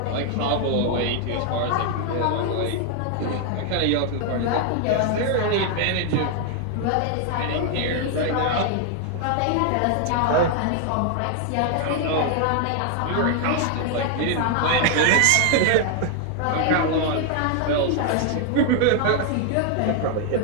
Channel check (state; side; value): different; both; correlation 0.00